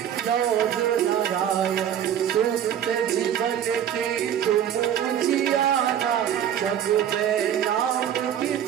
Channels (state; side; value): quieter; left; 9.8 dB